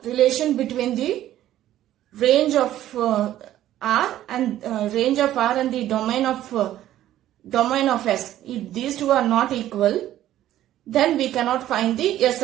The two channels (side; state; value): left; quieter; 13.0 dB